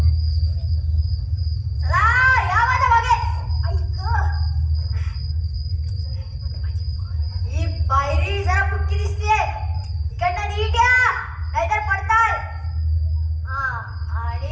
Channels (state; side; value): identical; both; correlation 1.00